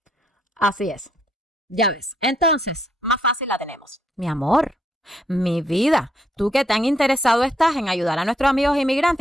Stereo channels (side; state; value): both; normal; correlation 0.73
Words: Así es. Ya ves. Entonces, más fácil la tenemos. Mi amor, mi vida, tú que tan interesado estás en ayudar a nuestros amigos